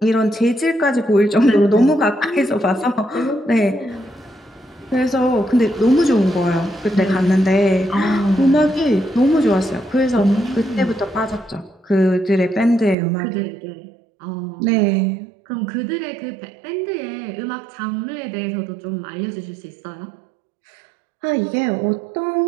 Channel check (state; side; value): drops out; left; at 13.0 s